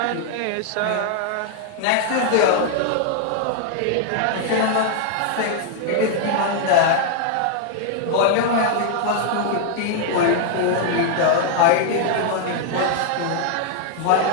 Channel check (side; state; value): both; different; correlation 0.00